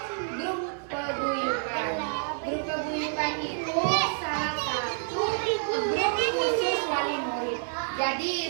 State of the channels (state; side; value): silent; left; digital silence